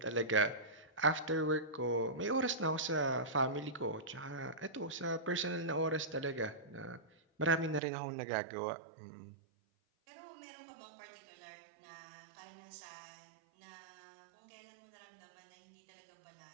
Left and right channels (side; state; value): left; drops out; at 7.8 s